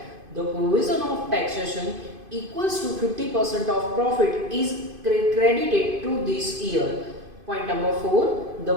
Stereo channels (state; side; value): late; left; 2.5 ms